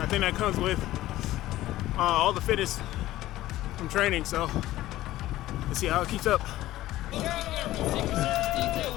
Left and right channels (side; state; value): right; quieter; 15.5 dB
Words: I think that comes with all the fitness from training, so let's see how it keeps up.